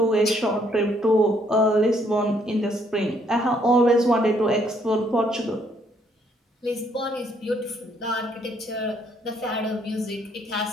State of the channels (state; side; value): normal; both; correlation 0.68